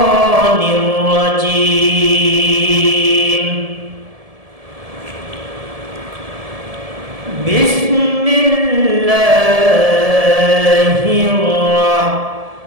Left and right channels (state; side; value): late; left; 1.7 ms